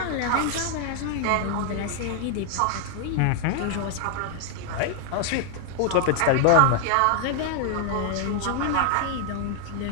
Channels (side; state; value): both; different; correlation 0.00